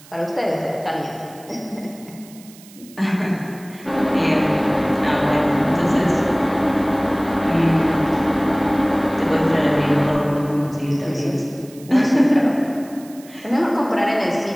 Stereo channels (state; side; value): noise; right; hiss, 23 dB below the sound